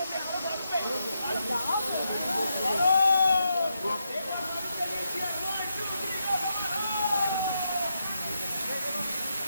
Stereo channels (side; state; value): both; inverted; correlation -0.84